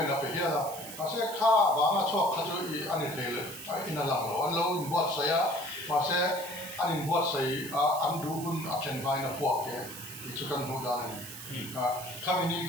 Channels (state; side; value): noise; right; hiss, 11 dB below the sound